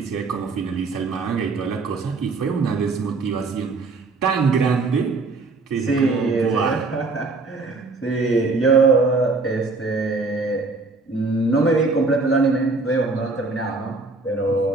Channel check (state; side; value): quieter; left; 3.8 dB